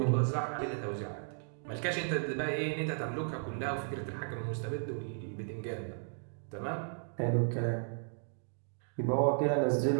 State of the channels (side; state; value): left; silent; digital silence